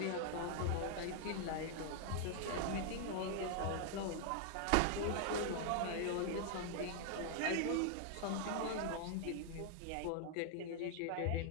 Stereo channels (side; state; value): both; different; correlation 0.00